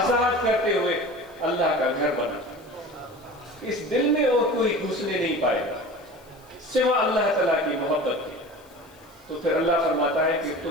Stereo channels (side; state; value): left; noise; hiss, 29 dB below the sound